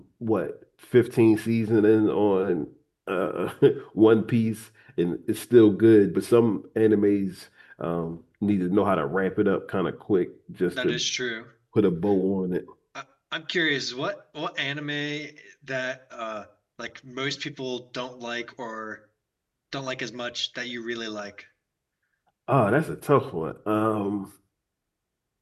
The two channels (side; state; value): both; identical; correlation 1.00